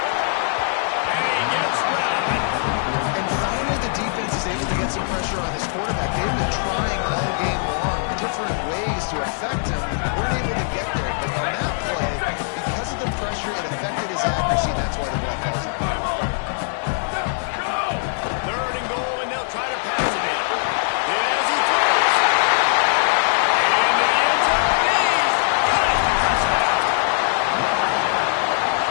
to affect him, weren't able to get there. But on that play, because of the pressure, it affected his accuracy, and that's why the ball falls out. Third and goal, and they'll try to pass it in. As he throws. And the end zone. He's got it. Touchdown.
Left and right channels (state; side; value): silent; right; 65 dB below the other